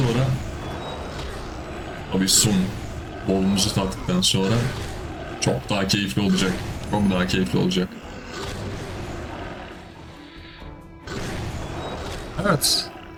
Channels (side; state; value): both; identical; correlation 1.00